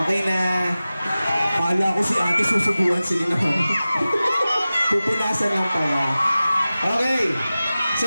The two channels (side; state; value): both; inverted; correlation -0.96